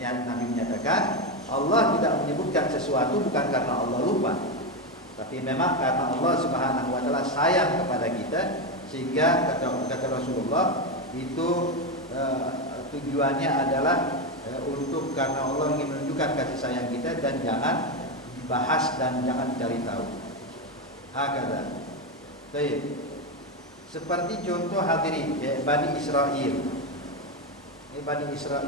Nabi menyatakan Allah tidak menyebutkan sesuatu bukan karena Allah lupa, tapi memang karena Allah Subhanahu wa taala sayang kepada kita, sehingga kata Rasulullah itu tujuannya adalah untuk karena Allah ingin menunjukkan kasih sayang kita dan jangan dibahas dan jangan dicari tahu. Hakada. Baik. Seperti contoh hadirin Bani Israel. Ini Bani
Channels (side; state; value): both; normal; correlation 0.10